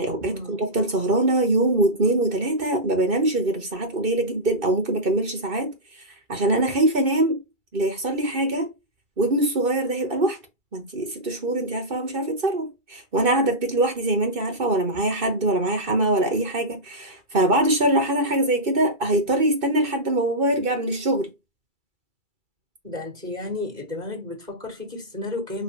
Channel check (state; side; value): late; left; 2.6 ms